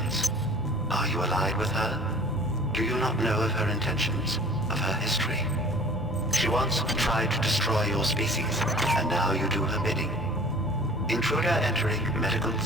Are you allied with her? Do you not know of her intentions, of her history? She once tried to destroy your species, and now you do her bidding. Intruder entering Medical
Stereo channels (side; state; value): both; normal; correlation 0.47